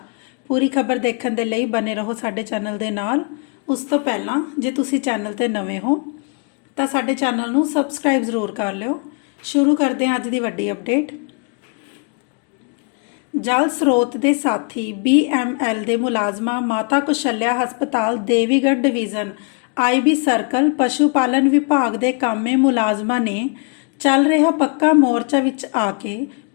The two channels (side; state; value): right; quieter; 35.7 dB